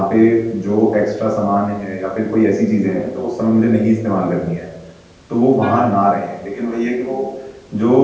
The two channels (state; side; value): identical; both; correlation 1.00